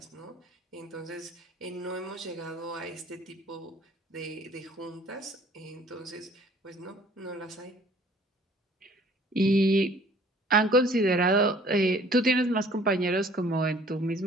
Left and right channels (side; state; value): both; normal; correlation 0.55